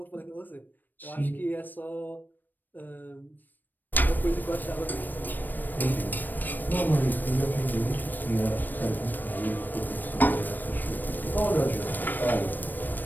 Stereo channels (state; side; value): late; right; 0.090 ms